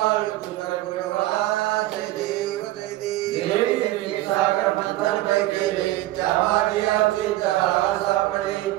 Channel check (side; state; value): left; quieter; 16.5 dB